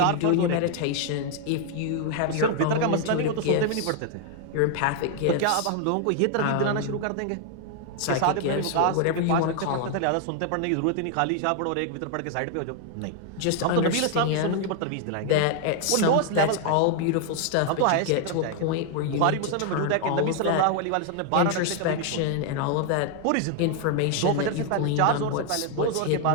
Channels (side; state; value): both; different; correlation 0.00